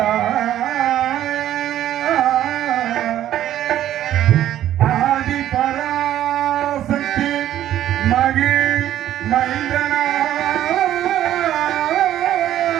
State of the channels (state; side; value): quieter; left; 12.2 dB